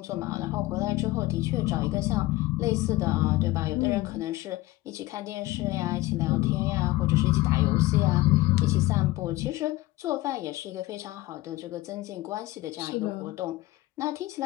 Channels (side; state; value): right; quieter; 18.7 dB